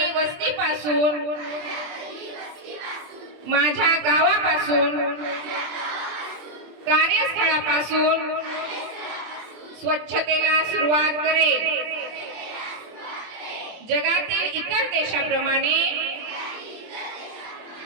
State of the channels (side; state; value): left; late; 24 ms